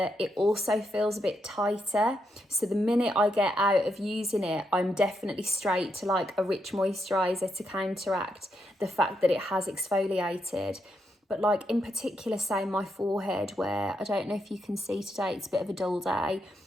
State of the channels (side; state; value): both; normal; correlation 0.81